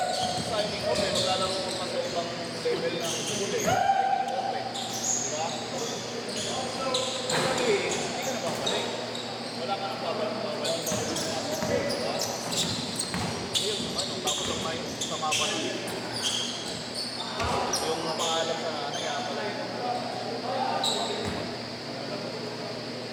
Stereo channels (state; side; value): identical; both; correlation 1.00